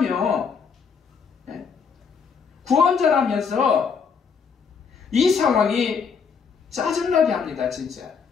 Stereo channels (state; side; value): quieter; right; 6.0 dB